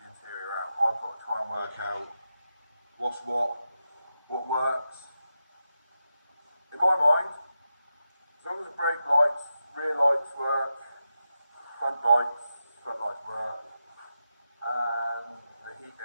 interior out. I've got to try and work out what's what works. In my mind, as long as the brake lights, rear lights work, front lights work, and the heating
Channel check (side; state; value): both; inverted; correlation -0.89